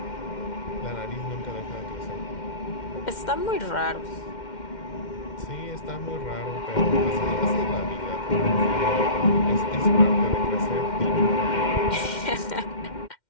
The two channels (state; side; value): late; right; 2.1 ms